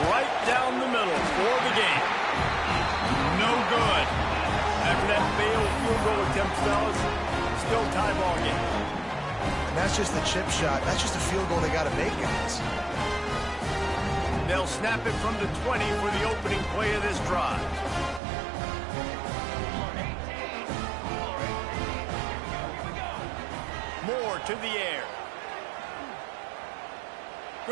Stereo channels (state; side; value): drops out; left; at 18.2 s